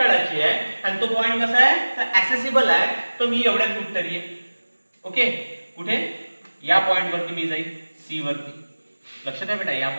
आहे आणि तो पॉइंट कसा आहे? तर ऍसेसिबल आहे, तर मी एवढ्यात कुठतरी आहे. ओके, कुठे? या पॉइंट वरती मी जाईल, सी वरती. लक्षात आहे बेटा, या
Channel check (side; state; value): both; inverted; correlation -1.00